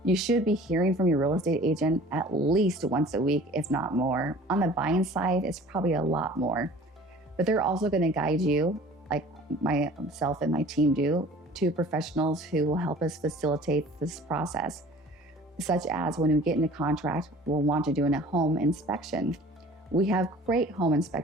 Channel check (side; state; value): both; normal; correlation 0.47